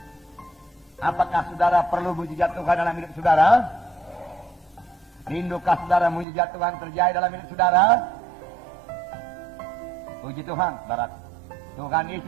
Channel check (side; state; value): left; drops out; at 6.2 s